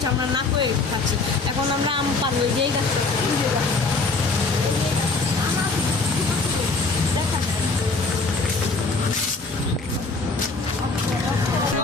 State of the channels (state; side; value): quieter; right; 3.8 dB